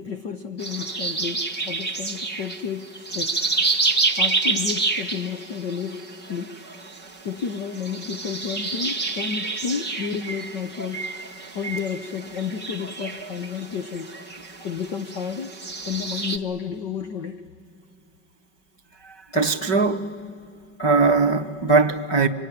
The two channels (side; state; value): right; late; 5.3 ms